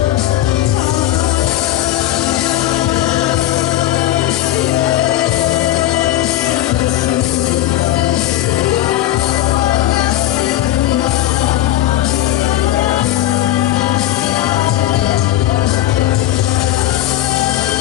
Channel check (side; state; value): right; quieter; 13.6 dB